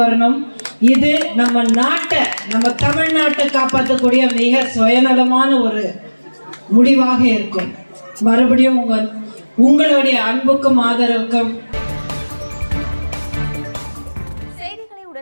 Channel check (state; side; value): inverted; both; correlation -1.00